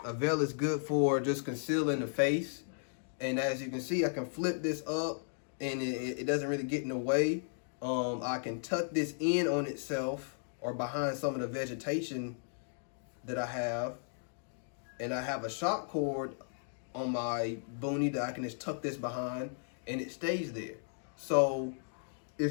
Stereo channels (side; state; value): right; silent; digital silence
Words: a veil is good for just concealing the face. And as you can see, I can flip this up and it doesn't really get in the way. I can tuck this in on itself or behind some of the vegetation that I have. And I have a shock cord on my boonie that I can just tuck this behind and it stays there. So